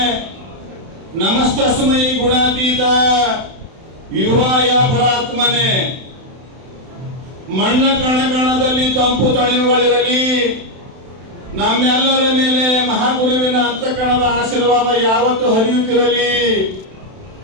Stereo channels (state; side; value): late; left; 31 ms